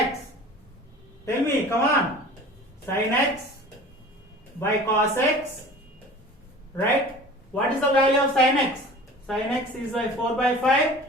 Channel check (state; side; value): normal; both; correlation 0.41